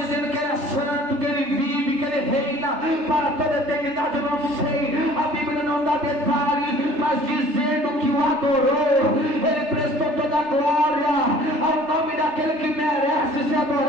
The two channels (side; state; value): left; late; 3.3 ms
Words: que ele é santo, que ele vive para toda a eternidade. Eu não sei, a Bíblia não dá detalhe, mas dizendo que o adorou, ele prestou toda a glória ao nome daquele que merece ser